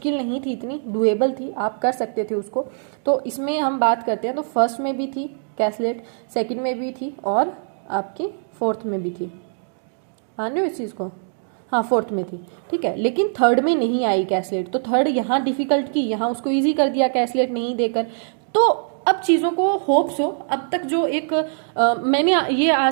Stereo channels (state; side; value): silent; left; digital silence